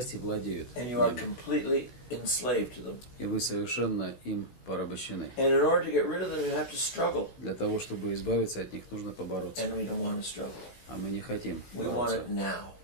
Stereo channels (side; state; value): right; late; 16 ms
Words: владеют. And you are completely enslaved to them. И вы совершенно им порабощены. And in order to get rid of them, you have to struggle. Для того, чтобы избавиться от них, нужно побороться. And we don't want to struggle. А мы не хотим. We want it now.